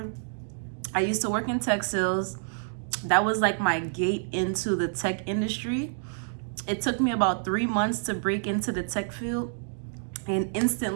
I used to work in tech sales. That was like my gate into the tech industry. It took me about 3 months to break into the tech field, and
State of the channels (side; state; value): left; silent; digital silence